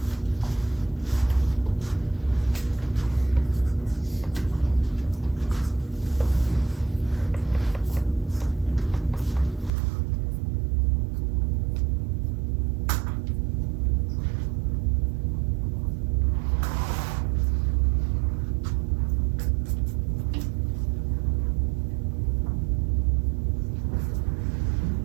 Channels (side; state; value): left; drops out; at 9.7 s